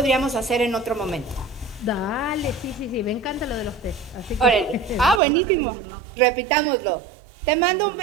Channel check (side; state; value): left; drops out; at 5.2 s